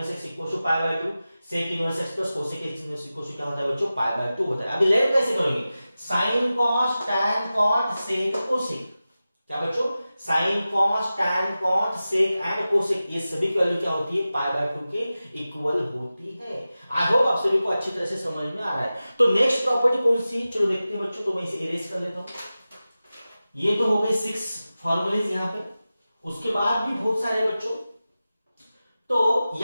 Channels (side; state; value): both; inverted; correlation -0.95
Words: x equal to pi by 2, sec inverse x plus cosec inverse equal to क्या होता है बच्चों, पाई बाय 2 होता है। अभी लेट कैसे करेंगे, sine cos tan cot sec cosec, क्या बच्चों, sine cos tan cot sec and cosec, ये सभी की वैल्यू क्या होती है, पाई बाय 2 के इक्वल होती है। आई होप आप सभी को अच्छी तरह से समझ में आ रहा है। तो नेक्स्ट प्रॉपर्टी कौन सी, चलो देखते हैं बच्चों। तो मैं इसे इरेज कर लेता हूं। ये तो हो गए 6 फॉर्मूलेज यहां पे, उसके बाद भी बहुत सारे बच्चों। तो